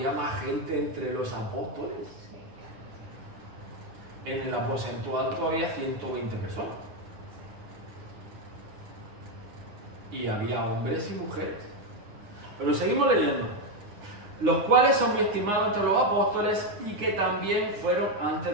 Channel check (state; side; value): late; left; 9.7 ms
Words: más gente entre los apóstoles? En el aposento alto había 120 personas. Y había hombres y mujeres. Pero seguimos leyendo. los cuales son muy estimados entre los apóstoles y que también fueron